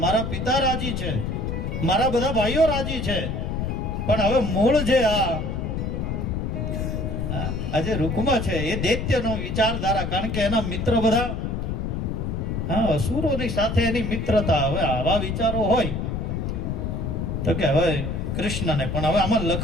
મારા પિતા રાજી છે, મારા બધા ભાઈઓ રાજી છે, પણ હવે મૂળ જે આજે રૂકમા છે એ દૈત્યનો વિચારધારા. કારણ કે એના મિત્ર બધા અસુરોની સાથે એની મિત્રતા. હવે આવા વિચારો હોય તો કે હવે કૃષ્ણને પણ હવે આમાં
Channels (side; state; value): left; noise; rumble, 2 dB below the sound